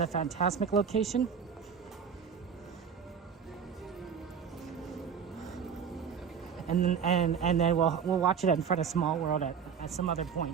Fantasmic location. and then we'll watch it in front of Small World at some other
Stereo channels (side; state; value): left; quieter; 7.0 dB